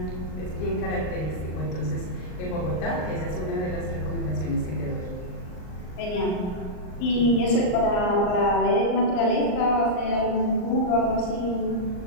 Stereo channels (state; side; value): late; right; 39 ms